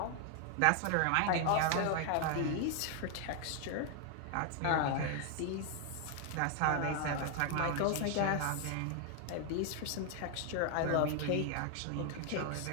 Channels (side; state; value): both; different; correlation 0.00